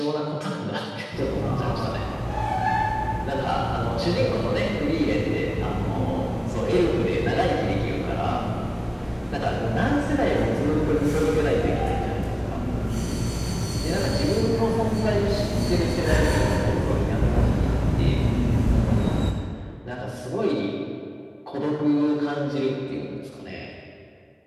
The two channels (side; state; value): both; identical; correlation 1.00